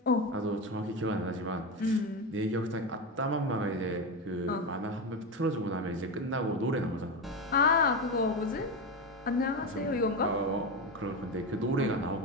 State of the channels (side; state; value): both; normal; correlation 0.17